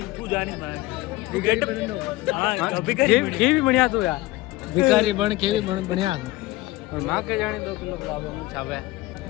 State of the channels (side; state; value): right; quieter; 18.9 dB